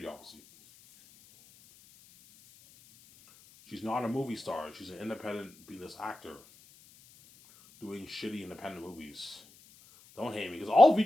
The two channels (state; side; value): noise; left; hiss, 25 dB below the sound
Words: obviously. She's not a movie star. She's an independent B-list actor doing shitty independent movies. Don't hate me, because all